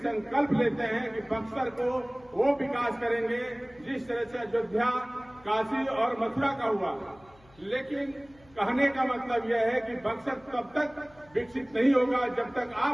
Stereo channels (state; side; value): noise; left; hum, 27 dB below the sound